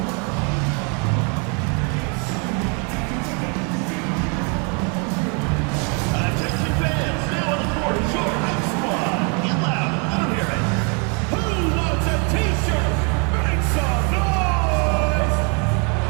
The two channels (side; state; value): left; quieter; 35.9 dB